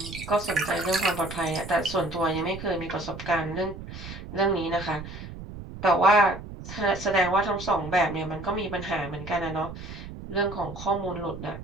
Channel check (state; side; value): noise; right; rumble, 11 dB below the sound